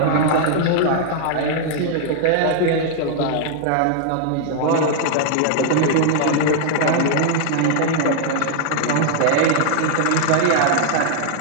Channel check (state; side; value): different; both; correlation -0.01